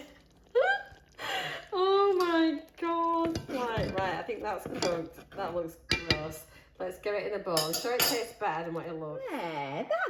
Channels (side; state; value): both; identical; correlation 1.00